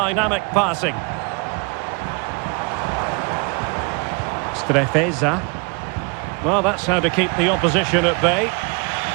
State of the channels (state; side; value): quieter; left; 32.4 dB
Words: passing. Strefeza. Well, that's how to keep the opposition at bay.